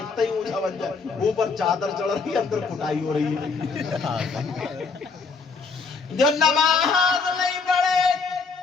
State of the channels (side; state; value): right; quieter; 4.7 dB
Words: ہی اونچا بن جائے, اوپر چادر چڑھ رہی ہے, اندر کٹائی ہو رہی ہے. جو نماز نہیں پڑھے,